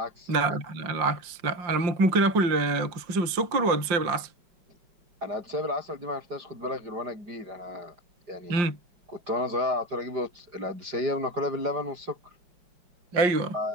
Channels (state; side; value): late; left; 5.7 ms